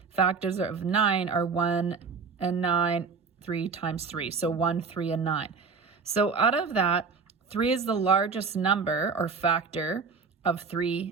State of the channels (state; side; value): quieter; left; 5.1 dB